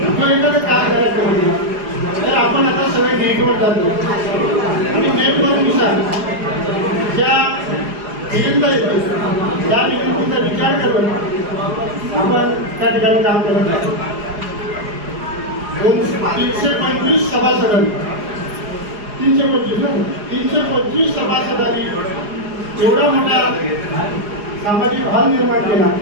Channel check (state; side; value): late; left; 4.8 ms